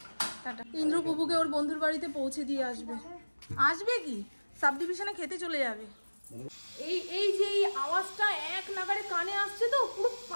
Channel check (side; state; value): both; inverted; correlation -1.00